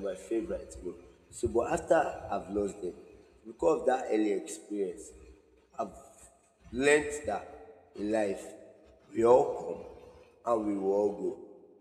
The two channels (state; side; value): identical; both; correlation 1.00